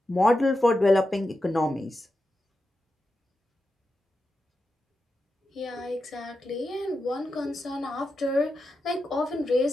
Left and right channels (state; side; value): normal; both; correlation 0.89